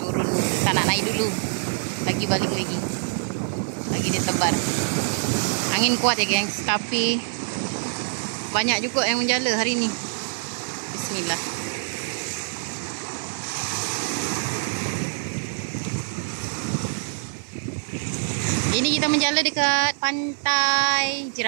tak nak naik dulu. Lagi balik lagi. Lagi dia tebar. Angin kuat ya gengs, tapi banyak juga yang menjala hari ni. Bismillah. Ini kita menjala dekat Pantai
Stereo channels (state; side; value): silent; left; digital silence